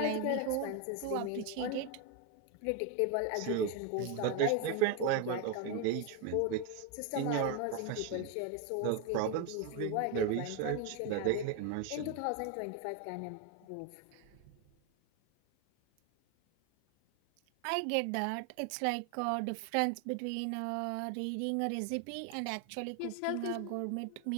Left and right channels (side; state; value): both; different; correlation 0.01